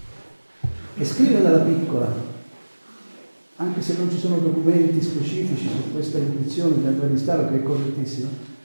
E scrive dalla piccola, anche se non ci sono documenti specifici su questa intuizione di Andrea Mestaro, che è correttissima,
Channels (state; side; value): inverted; both; correlation -1.00